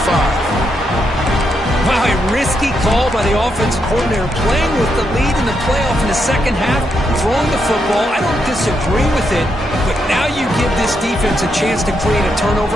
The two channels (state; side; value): normal; both; correlation 0.80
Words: 45. Wow, a risky call by the offensive coordinator, playing with the lead in the playoff in the second half, throwing the football. I don't disagree with it, but now you give this defense a chance to create a